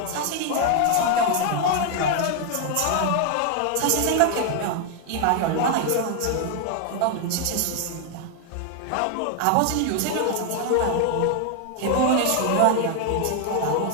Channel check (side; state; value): both; different; correlation 0.00